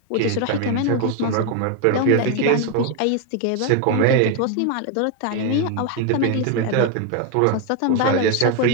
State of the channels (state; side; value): different; both; correlation 0.01